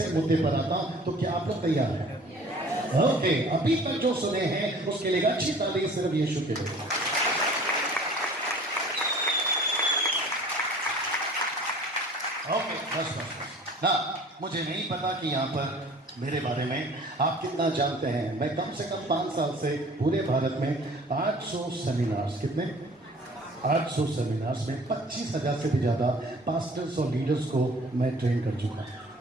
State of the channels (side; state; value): both; normal; correlation 0.48